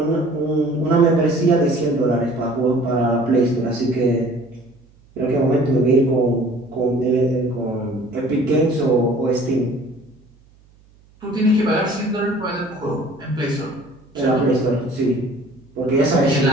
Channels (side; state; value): right; noise; hum, 30 dB below the sound